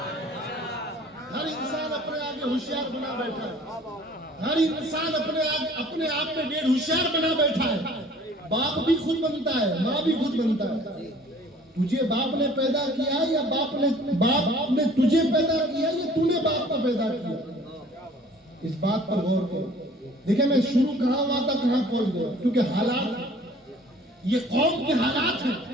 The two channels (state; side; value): normal; both; correlation 0.51